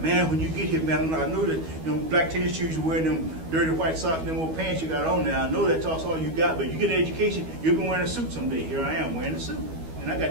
Man, when you get here, man, I know that, you know, black tennis shoes, you're wearing them dirty white socks and them old pants you got on now. I know that's all you got, but you get an education, you'll be wearing a suit someday. Here I am wearing a suit. And I got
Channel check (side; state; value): left; late; 12 ms